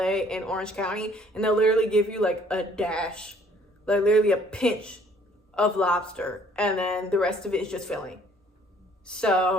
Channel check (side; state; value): both; normal; correlation 0.59